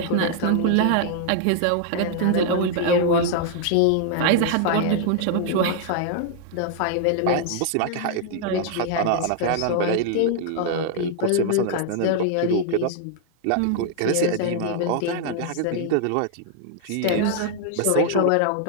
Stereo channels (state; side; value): different; both; correlation 0.00